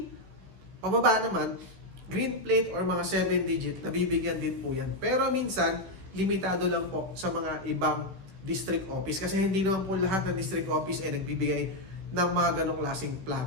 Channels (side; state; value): left; late; 16 ms